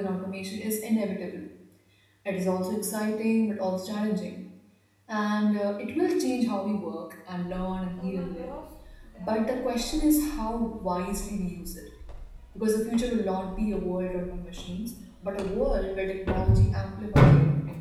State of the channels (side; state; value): both; identical; correlation 1.00